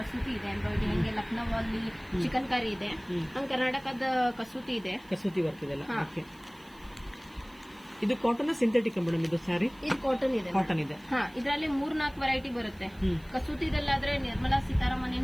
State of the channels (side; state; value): right; noise; hiss, 28 dB below the sound